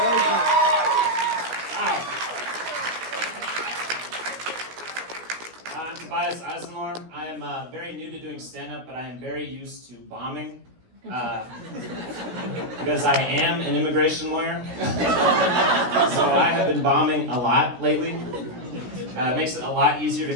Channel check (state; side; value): late; left; 16 ms